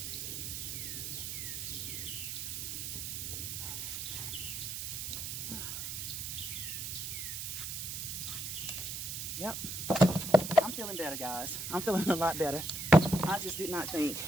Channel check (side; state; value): right; noise; hiss, 4 dB below the sound